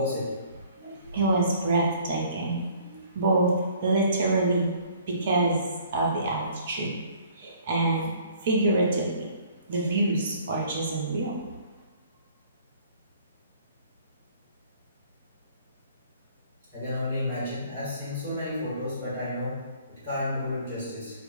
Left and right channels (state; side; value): inverted; both; correlation -0.56